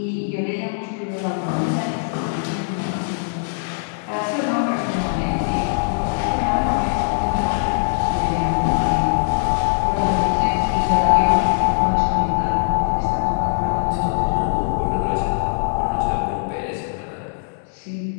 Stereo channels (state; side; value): silent; right; digital silence